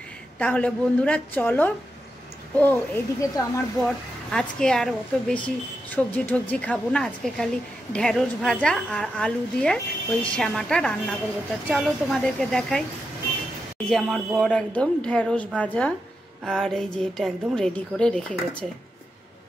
তাহলে বন্ধুরা চলো। ও এইদিকে তো আমার বর আজকে আর অত বেশি সবজি টবজি খাবো না, আজকে খালি ঢেঁড়স ভাজা আর আলু দিয়ে ওই শ্যামাটা রান্না করবো। তা চলো তোমাদেরকে দেখাই। এই যে আমার বর একদম ঢেঁড়স ভাজা আর এই যে এটা একদম রেডি করে রেখে গেছে।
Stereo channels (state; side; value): normal; both; correlation 0.87